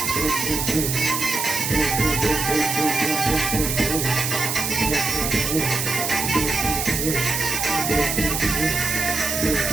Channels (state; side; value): noise; right; hiss, 1 dB below the sound